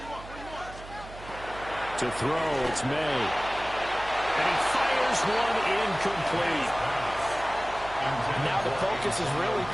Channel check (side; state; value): right; noise; hum, 15 dB below the sound